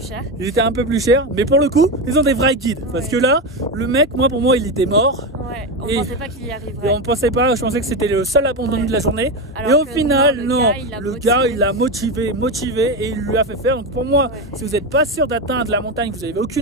chers. Ils étaient un peu plus chers, mais pour le coup, ils ont des vrais guides. Parce que là, le mec, pour moi, il était mort. Ouais, on pensait pas qu'il y arriverait. Et on pensait pas, je pensais que c'était le seul abandon de la journée. Alors et au final, le gars, il l'a motivé et il lui a fait faire. Donc pour moi, si vous n'êtes pas sûr d'atteindre la montagne, vous n'avez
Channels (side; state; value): both; normal; correlation 0.15